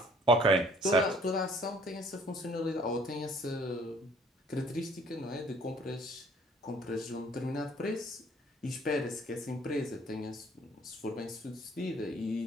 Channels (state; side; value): normal; both; correlation 0.57